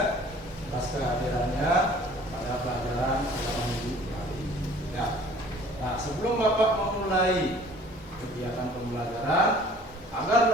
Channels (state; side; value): normal; both; correlation 0.51